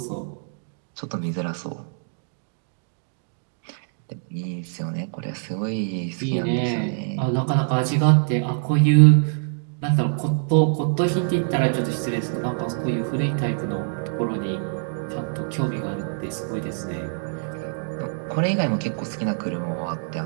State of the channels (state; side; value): silent; left; digital silence